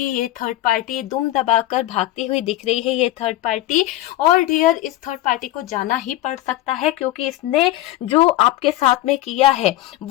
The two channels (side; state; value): right; quieter; 15.7 dB